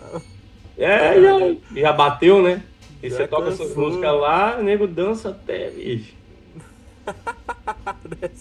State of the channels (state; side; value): identical; both; correlation 1.00